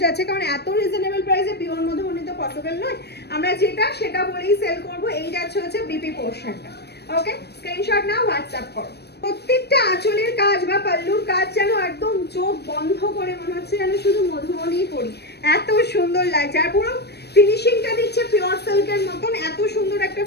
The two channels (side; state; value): right; late; 0.48 ms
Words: যাচ্ছে, কারণ এত রিজনেবল প্রাইসে পিওর মধুবনী তো পসিবল নয়। আমরা যেটা সেটা বলেই সেল করব। এই যাচ্ছে হচ্ছে বিপি পোর্শনটা। ওকে, স্ক্রিনশট নাও, হোয়াটসঅ্যাপ করো। প্রত্যেকটা আঁচলের কাজ বা পাল্লুর কাজ যেন একদম চোখ বন্ধ করে মনে হচ্ছে যেন শুধু মধুবনী পরি, এত সুন্দর লাগছে। আর পুরো ফিনিশিংটা দিচ্ছে পিওর সিল্কের মতন, এত সুন্দর একটা